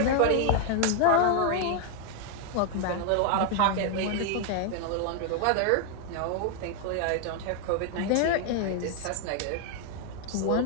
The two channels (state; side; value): different; both; correlation 0.00